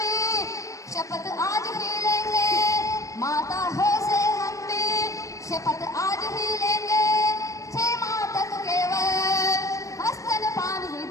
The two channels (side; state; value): right; late; 0.16 ms